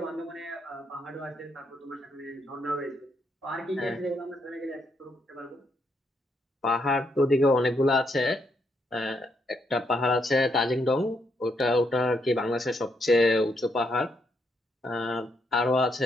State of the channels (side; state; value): both; normal; correlation 0.77